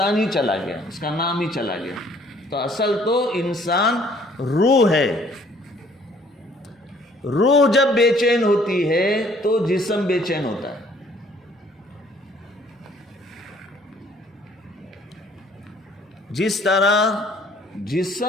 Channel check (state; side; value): normal; both; correlation 0.59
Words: ہی چلا گیا، اس کا نام ہی چلا گیا۔ تو اصل تو انسان روح ہے۔ روح جب بے چین ہوتی ہے تو جسم بے چین ہوتا ہے۔ جس طرح